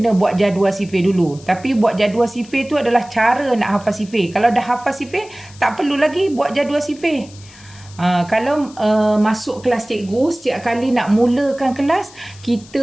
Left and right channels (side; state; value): left; noise; hiss, 22 dB below the sound